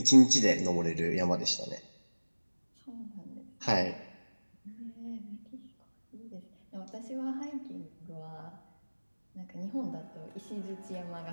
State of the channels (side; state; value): both; inverted; correlation -1.00